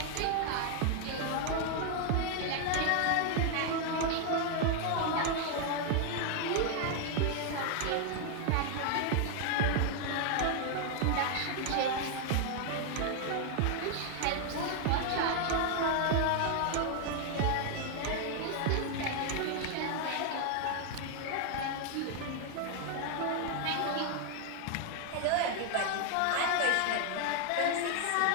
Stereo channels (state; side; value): different; both; correlation 0.00